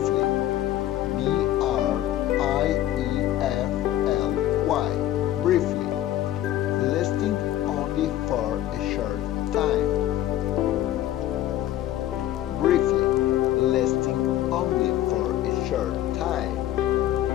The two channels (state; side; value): quieter; right; 13.2 dB